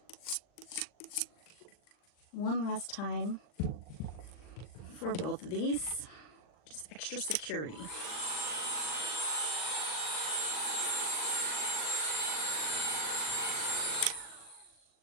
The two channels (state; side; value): late; right; 39 ms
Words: One last time for both of these, just extra security.